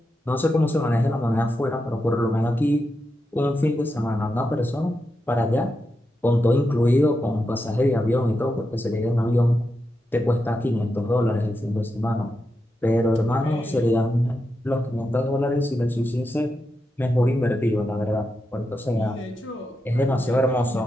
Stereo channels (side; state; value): both; normal; correlation 0.87